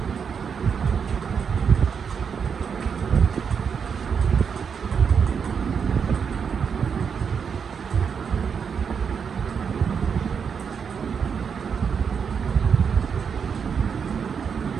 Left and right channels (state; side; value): quieter; left; 6.6 dB